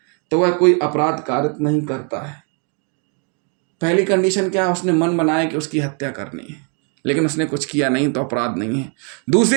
तो वह कोई अपराध कारित नहीं करता है। पहली कंडीशन क्या है? उसने मन बनाया कि उसकी हत्या करनी है, लेकिन उसने कुछ किया नहीं तो अपराध नहीं है।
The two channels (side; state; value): left; quieter; 39.5 dB